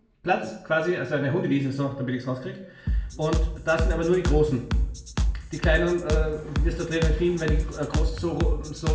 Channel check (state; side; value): identical; both; correlation 1.00